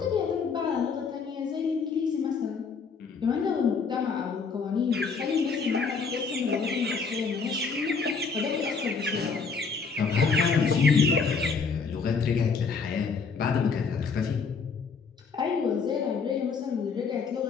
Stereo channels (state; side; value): quieter; right; 5.2 dB